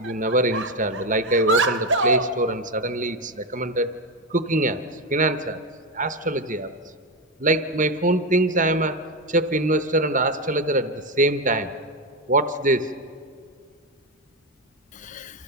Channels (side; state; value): both; normal; correlation 0.11